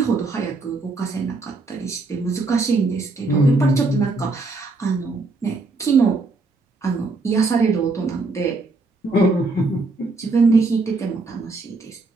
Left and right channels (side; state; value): left; quieter; 3.5 dB